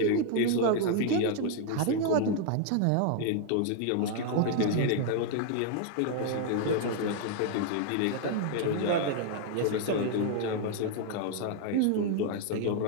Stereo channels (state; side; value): different; both; correlation 0.00